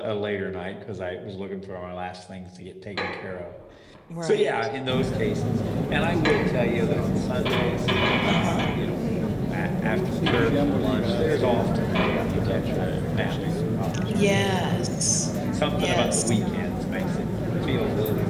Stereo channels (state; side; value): identical; both; correlation 1.00